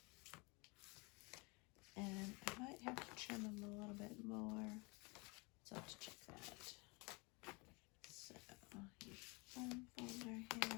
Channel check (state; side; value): quieter; right; 28.3 dB